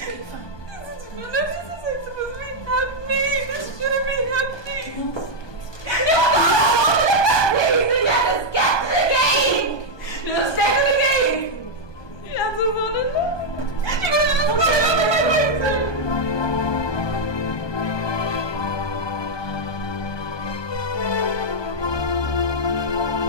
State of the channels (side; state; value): right; late; 1.2 ms